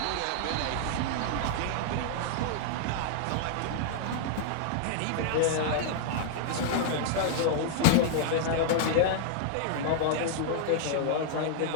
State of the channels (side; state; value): both; different; correlation -0.01